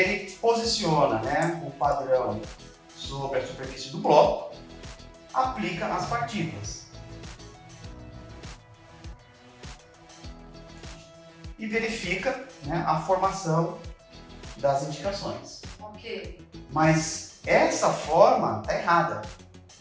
posiciona, né, o padrão sobre a superfície do bloco, aplica as partículas e verifica, né, a formação das indicações. Ok. Mas essa forma está errada.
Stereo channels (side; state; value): both; identical; correlation 1.00